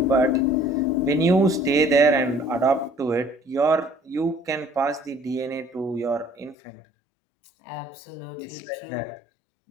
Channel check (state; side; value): drops out; right; at 6.6 s